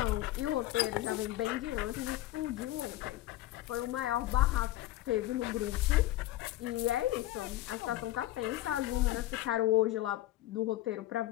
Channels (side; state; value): right; quieter; 15.6 dB